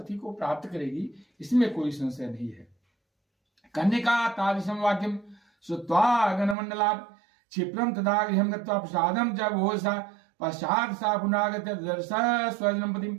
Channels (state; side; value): drops out; left; at 6.6 s